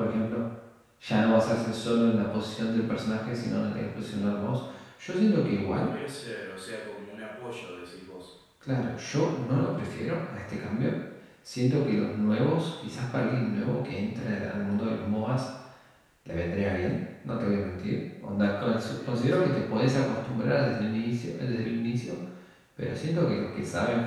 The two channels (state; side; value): identical; both; correlation 1.00